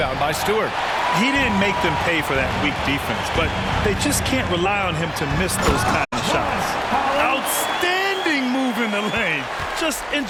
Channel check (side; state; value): both; identical; correlation 1.00